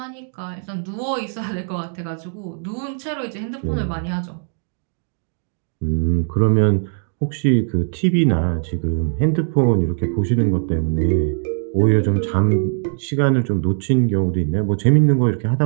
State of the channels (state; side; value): silent; left; digital silence